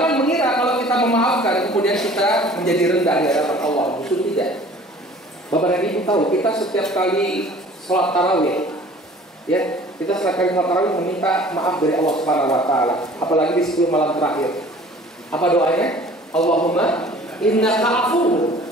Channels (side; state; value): both; normal; correlation 0.48